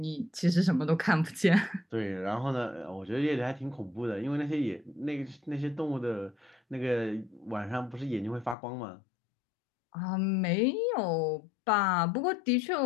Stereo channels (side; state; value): right; drops out; at 8.6 s